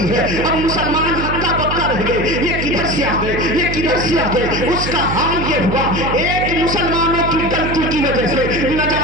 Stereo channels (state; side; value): noise; right; hum, 4 dB below the sound